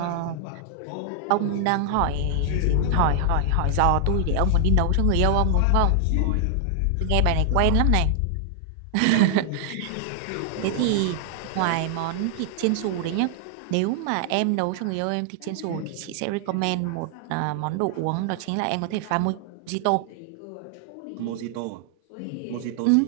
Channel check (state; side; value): different; both; correlation 0.00